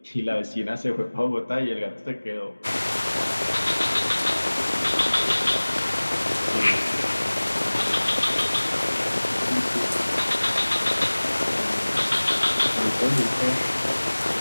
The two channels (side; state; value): both; inverted; correlation -1.00